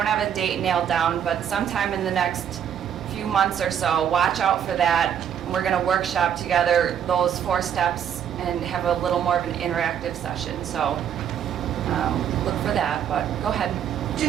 have a date nailed down, but sometime in the next few months or so, watch out for that. And we're going to workshop together those 4 steps and have a little more of an interactive session. So look for that, but go ahead.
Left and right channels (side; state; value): left; quieter; 9.0 dB